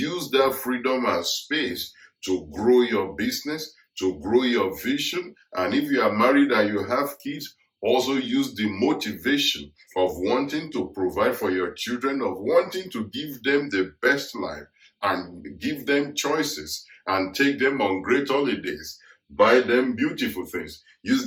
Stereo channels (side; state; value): both; identical; correlation 1.00